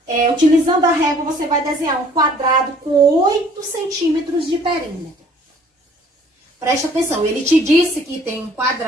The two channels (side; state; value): both; normal; correlation 0.56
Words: utilizando a régua, você vai desenhar um quadrado com 8 centímetros de perímetro. Preste atenção, ele te disse que tem um